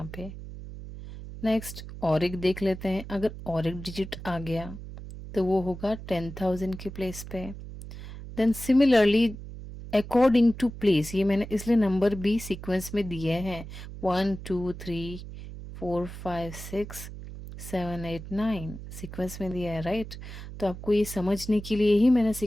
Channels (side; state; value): right; noise; hum, 12 dB below the sound